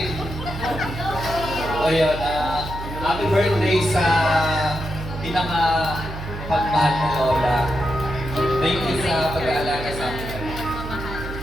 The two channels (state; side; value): noise; right; hum, 9 dB below the sound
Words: Ayun, happy birthday sa pinaka-pagmahal na Lola. Thank you sa pag-aalaga sa amin.